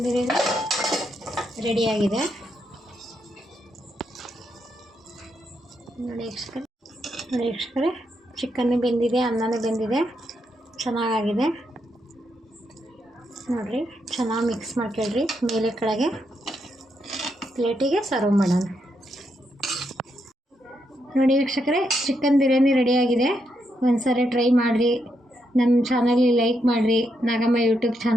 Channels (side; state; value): both; normal; correlation 0.80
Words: ಬಿರಿಯಾನಿ ರೆಡಿಯಾಗಿದೆ. ನೋಡಿ ವೀಕ್ಷಕರೇ, ಚಿಕನ್ನು ಬೆಂದಿದೆ, ಅನ್ನನೂ ಬೆಂದಿದೆ, ಚೆನ್ನಾಗಾಗಿದೆ. ನೋಡಿರಿ, ಚೆನ್ನಾಗಿ ಮಿಕ್ಸ್ ಮಾಡ್ಕೊಳ್ರಿ. ಮೇಲೆ ಕೆಳಗೆ ಪ್ಲೇಟಿಗೆ ಸರ್ವ್ ಮಾಡೋಣ. ನೋಡಿ ವೀಕ್ಷಕರೇ, ಚಿಕನ್ ಬಿರಿಯಾನಿ ರೆಡಿಯಾಗಿದೆ. ಒಂದ್ಸರಿ ಟ್ರೈ ಮಾಡಿರಿ. ನಮ್ಮ ಚಾನಲ್ಗೆ ಲೈಕ್ ಮಾಡಿರಿ. ನಾಗಮ್ಮ ಯೂಟ್ಯೂಬ್